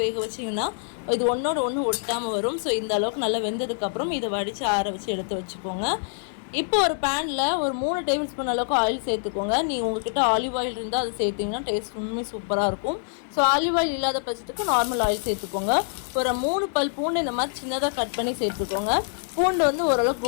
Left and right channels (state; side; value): silent; right; digital silence